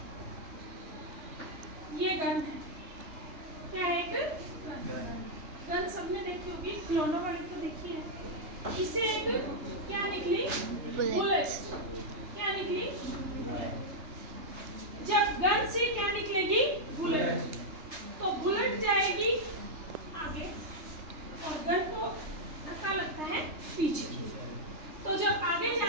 ये गन है, क्या है, एक गन सबने देखी होगी, खिलौनों वाली तो देखी है। इससे एक क्या निकली, बुलेट। क्या निकली, जब गन से क्या निकलेगी, बुलेट, तो बुलेट जाएगी आगे और गन को धक्का लगता है पीछे। तो तो जब आगे जा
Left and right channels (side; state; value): left; late; 3.3 ms